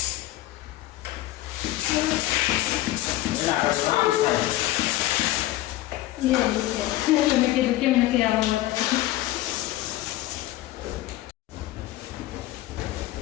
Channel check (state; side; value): quieter; right; 16.1 dB